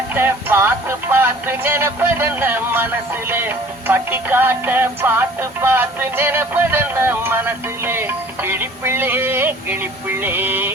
பார்த்து பார்த்து நினைப்பதென்ன மனசுலே பட்டி காட்ட பார்த்து பார்த்து நினைப்பதென்ன மனசுலே கிளிப்பிள்ளே கிளிப்பிள்ளே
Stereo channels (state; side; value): normal; both; correlation 0.50